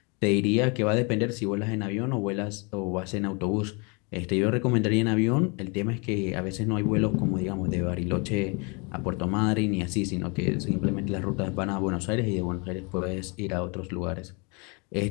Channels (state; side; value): quieter; right; 31.7 dB